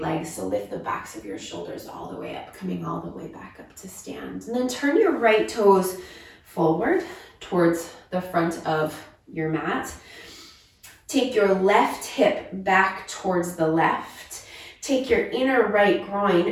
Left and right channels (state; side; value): identical; both; correlation 1.00